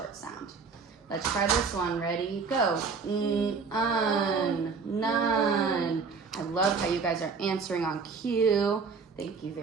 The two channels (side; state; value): left; quieter; 5.1 dB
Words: sound. Let's try this one. Ready, go. None. I love how you guys are answering on cue. Thank you